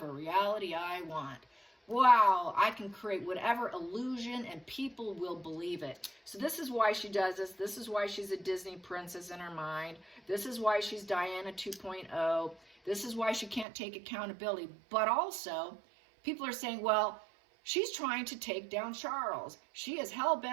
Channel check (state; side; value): drops out; left; at 13.7 s